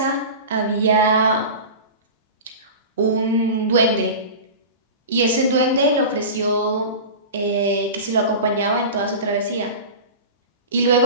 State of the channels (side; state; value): both; inverted; correlation -0.31